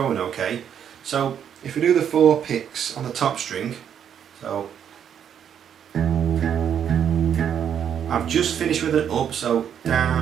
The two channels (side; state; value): left; quieter; 8.7 dB